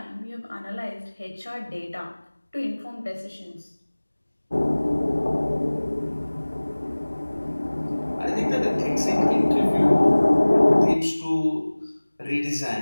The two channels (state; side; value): inverted; both; correlation -1.00